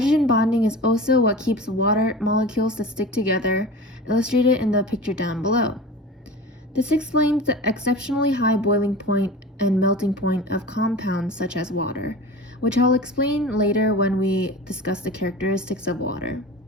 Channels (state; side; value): normal; both; correlation 0.34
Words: bonding is also what keeps water molecules to stick together, illustrated in the picture down below. This explains the exceptionally high boiling point and melting point of compounds such as water, which I'll explain later when we discuss the characteristics of water.